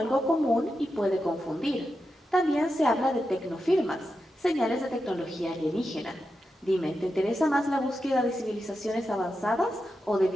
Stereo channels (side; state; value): both; normal; correlation 0.89